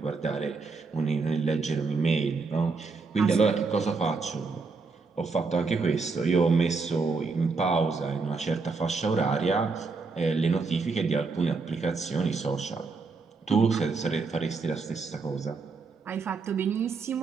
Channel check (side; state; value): left; quieter; 4.4 dB